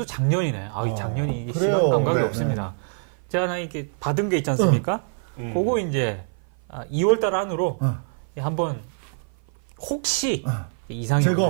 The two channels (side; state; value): left; silent; 55 dB below the other